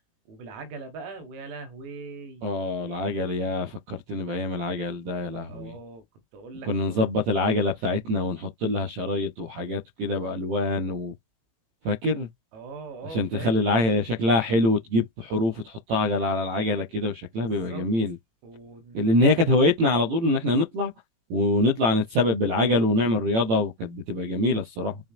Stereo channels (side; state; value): left; late; 18 ms